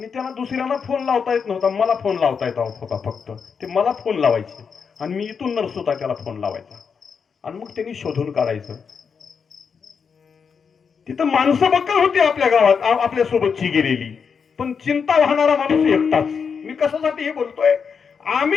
त्यांना दुसऱ्यांना फोन लावता येत नव्हता, मला फोन लावता येत होता फक्त. ते मला फोन लावायचे आणि मी इथून नर्स होता त्याला फोन लावायचा आणि मग त्यांनी शोधून काढायचं. तिथं माणसं बक्कल होती आपल्या गावात, आपल्या सोबतची गेलेली, पण चिंता वाहणारा माणूस एकटाच. मी कशासाठी हे बोलतोय,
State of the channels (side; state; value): right; quieter; 6.2 dB